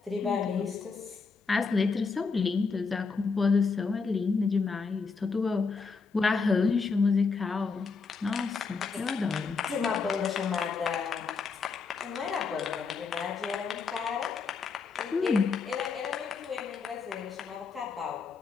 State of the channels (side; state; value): right; quieter; 4.9 dB